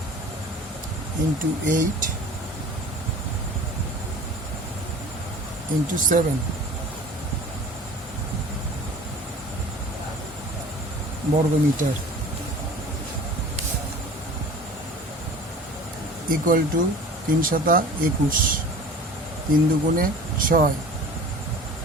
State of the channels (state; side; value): normal; both; correlation 0.43